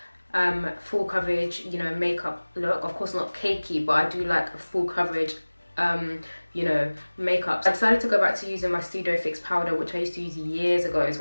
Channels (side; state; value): both; inverted; correlation -1.00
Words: full coverage, you know, makeup look. Of course not cakey, but I do like a full coverage, you know, makeup. I decided to go back to using my Studio Fix powder, which I used to use years ago. It's